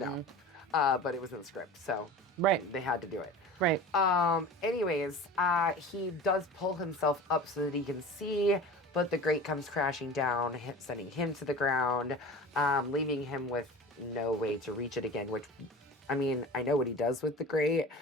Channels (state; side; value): normal; both; correlation 0.36